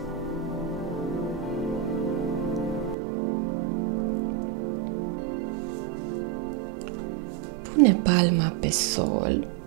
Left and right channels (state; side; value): drops out; left; at 3.0 s